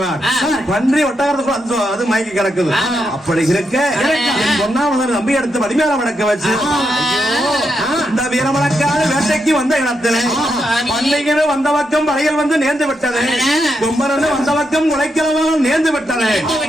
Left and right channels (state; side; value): normal; both; correlation 0.83